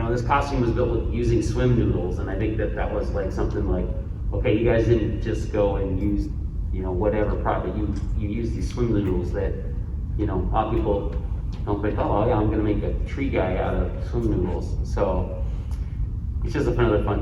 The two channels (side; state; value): both; identical; correlation 1.00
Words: costume was built with using swim noodles, and I think that was like something like, okay, you guys didn't just go and use whatever product, you use these swim noodles that a lot of people don't think, oh yeah, I'm gonna make a tree guy out of swim noodles. So it's just another